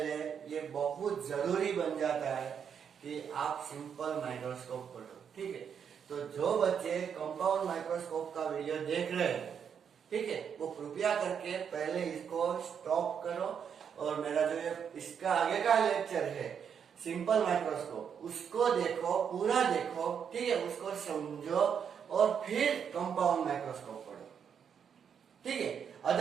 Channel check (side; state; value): left; quieter; 7.5 dB